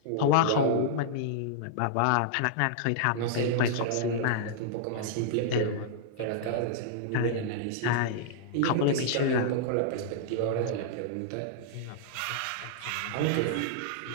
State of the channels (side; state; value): both; different; correlation -0.01